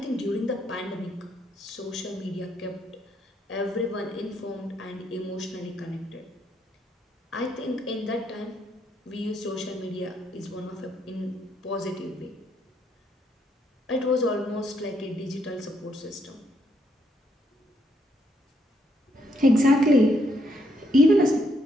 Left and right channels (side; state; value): both; normal; correlation 0.74